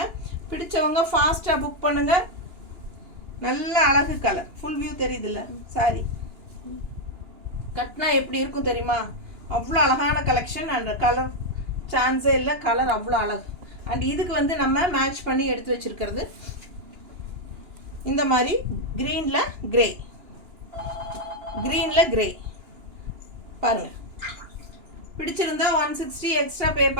பிடிச்சவங்க ஃபாஸ்ட்டாக புக் பண்ணுங்கள். நல்ல அழகு கலர், ஃபுல் வியூ தெரியுதுல்ல சாரி? கட்டினா எப்படி இருக்கும் தெரியுமா? அவ்வளோ அழகான கலெக்ஷன். அண்ட் கலர் சான்ஸே இல்லை, கலர் அவ்வளோ அழகு. அண்ட் இதுக்கு வந்து நம்ம மேட்ச் பண்ணி எடுத்து வச்சுருக்கிறது இந்த மாதிரி க்ரீனில் கிரே, க்ரீனில் கிரே பாருங்கள். பிடிச்சிருந்தா 160 எக்ஸ்ட்ரா பே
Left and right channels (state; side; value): late; left; 2.9 ms